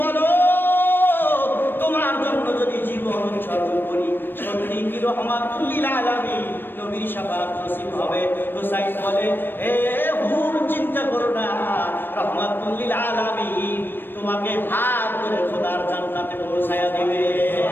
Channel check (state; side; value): late; right; 0.096 ms